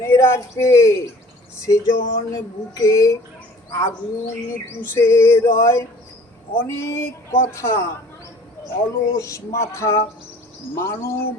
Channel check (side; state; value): both; normal; correlation 0.50